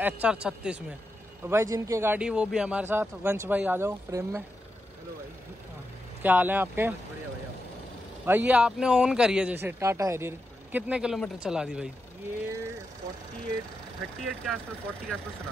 HR36 में। तो भाई जिनकी गाड़ी वो भी हमारे साथ। वंश भाई आ जाओ फ्रेम में। हेलो भाई, क्या हाल है आपके? बढ़िया भाई। भाई ये आपने ऑन करी है जैसे टाटा हैरियर, कितने किलोमीटर चला दी भाई? ये 38 के आसपास, 40 के आसपास चला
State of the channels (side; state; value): both; normal; correlation 0.87